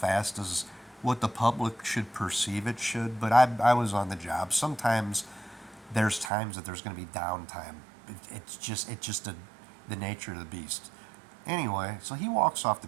as what the public should perceive it should. But I was on the job. Sometimes there's times that there's going to be downtime. It's just the nature of the beast. Anyway, so he walks off the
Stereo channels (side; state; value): left; drops out; at 6.3 s